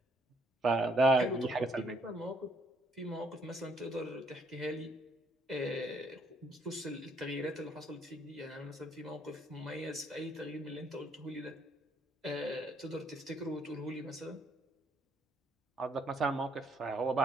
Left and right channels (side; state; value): both; normal; correlation 0.67